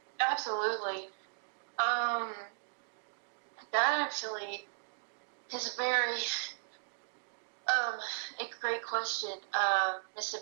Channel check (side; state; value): left; silent; digital silence